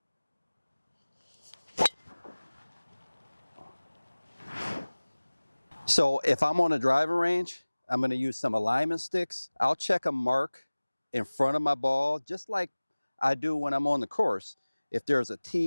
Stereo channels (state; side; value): inverted; both; correlation -1.00